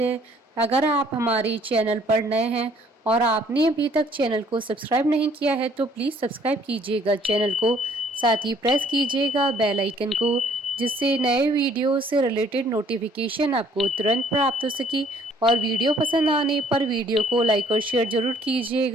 है, अगर आप हमारे चैनल पर नए हैं और आपने अभी तक चैनल को सब्सक्राइब नहीं किया है तो प्लीज़ सब्सक्राइब कीजिएगा चैनल को, साथ ही प्रेस कीजिएगा बेल आइकन को, जिससे नए वीडियो से रिलेटेड नोटिफिकेशन आपको तुरंत प्राप्त हो सके। और वीडियो पसंद आने पर वीडियो को लाइक और शेयर जरूर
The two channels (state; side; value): normal; both; correlation 0.60